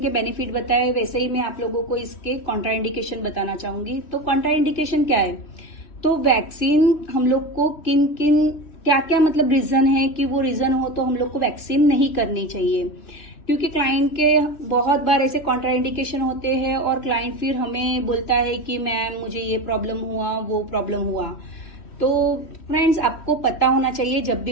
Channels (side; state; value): right; late; 3.2 ms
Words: के बेनिफिट बताए, वैसे ही मैं आप लोगों को इसके कॉन्ट्राइंडिकेशन बताना चाहूंगी। तो कॉन्ट्राइंडिकेशन क्या है, तो वैक्सीन हम लोग को किन किन क्या क्या मतलब रीजन है कि वो रीजन हो तो हम लोग को वैक्सीन नहीं करनी चाहिए। क्योंकि क्लाइंट के बहुत बार ऐसे कॉन्ट्राइंडिकेशन होते हैं और क्लाइंट फिर हमें बोलता है कि मैम मुझे ये प्रॉब्लम हुआ, वो प्रॉब्लम हुआ। तो फ्रेंड्स आपको पता होना चाहिए जब